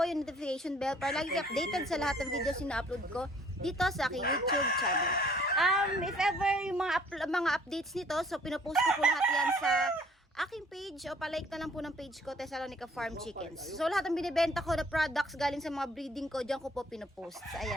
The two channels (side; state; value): both; normal; correlation 0.58